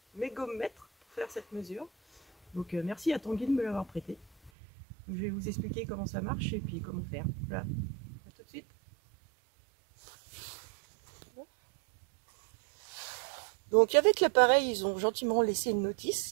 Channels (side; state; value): left; drops out; at 4.5 s